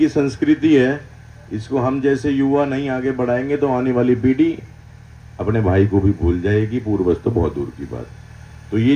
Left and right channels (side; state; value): both; identical; correlation 1.00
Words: संस्कृति है, इसको हम जैसे युवा नहीं आगे बढ़ाएंगे तो आने वाली पीढ़ी अपने भाई को भी भूल जाएगी, पूर्वज तो बहुत दूर की बात। तो ये